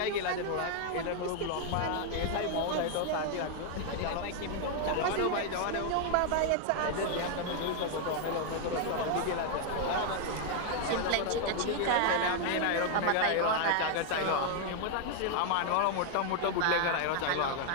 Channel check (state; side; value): different; both; correlation 0.00